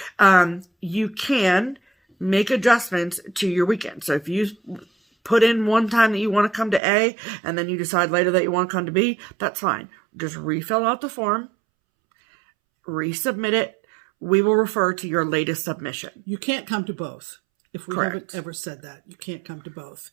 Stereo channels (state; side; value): drops out; left; at 6.8 s